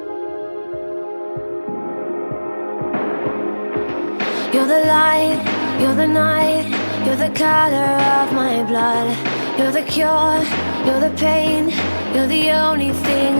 the light, you're the night, you're the color of my blood. You're the cure, you're the pain, you're the only thing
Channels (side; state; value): both; inverted; correlation -1.00